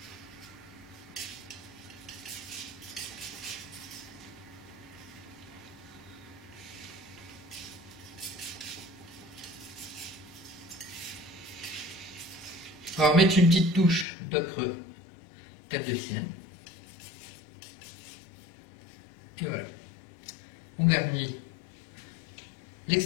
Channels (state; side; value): drops out; right; at 14.1 s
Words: On va remettre une petite touche d'ocre terre de sienne. Et voilà. On garnit